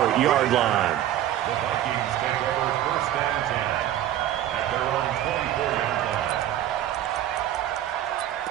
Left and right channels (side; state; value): left; quieter; 12.2 dB